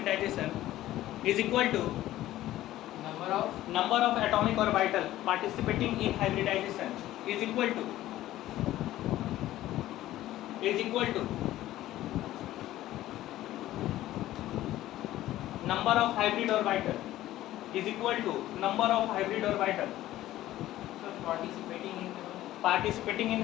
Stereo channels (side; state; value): right; quieter; 14.6 dB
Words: is equal to number of atomic orbital participating in hybridization is equal to number of hybrid orbital is equal to number of hybrid orbital participating